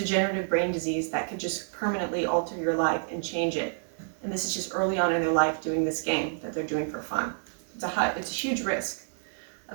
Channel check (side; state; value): left; silent; digital silence